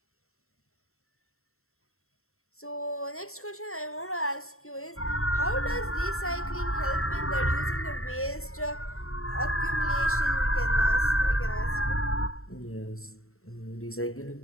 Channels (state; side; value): late; right; 0.63 ms